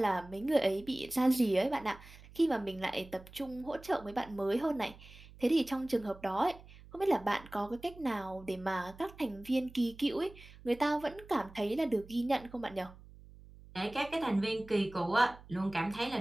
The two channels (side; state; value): right; noise; hum, 20 dB below the sound